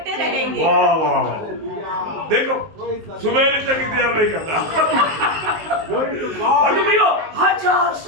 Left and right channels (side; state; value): left; late; 19 ms